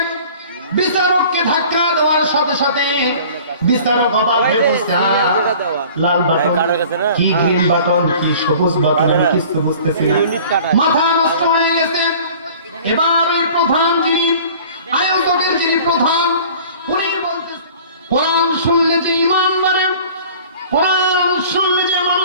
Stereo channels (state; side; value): inverted; both; correlation -0.46